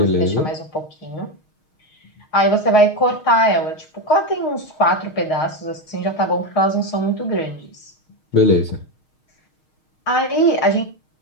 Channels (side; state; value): right; late; 6.4 ms